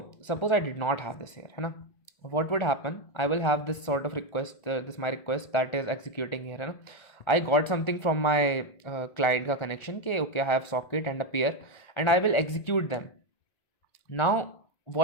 suppose I did not have this here, है ना. What would happen? I will have this sort of request, this my request that is executing here, है ना. I got something from my client का connection के okay I have socket and a peer and I will execute them. Now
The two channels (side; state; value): right; late; 1.3 ms